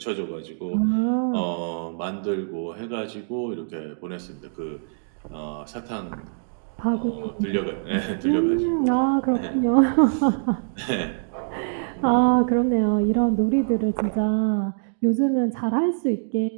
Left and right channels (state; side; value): silent; left; digital silence